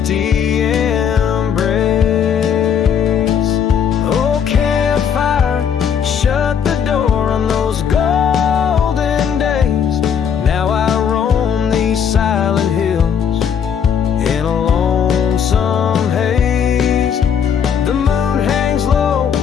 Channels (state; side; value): quieter; right; 7.7 dB